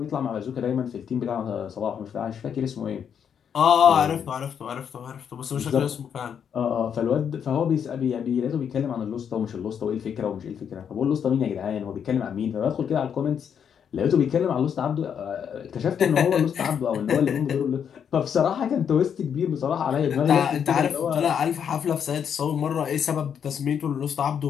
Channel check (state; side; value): quieter; right; 7.9 dB